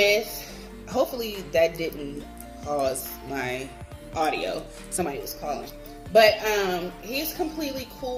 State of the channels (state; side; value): identical; both; correlation 1.00